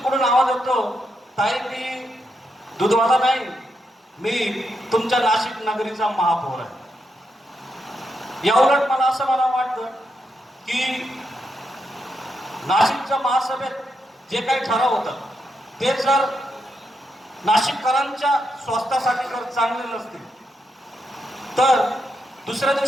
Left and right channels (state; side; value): normal; both; correlation 0.83